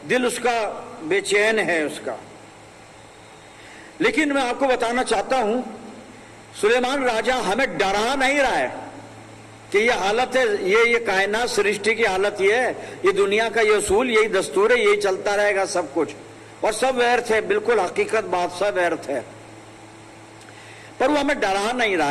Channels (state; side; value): identical; both; correlation 1.00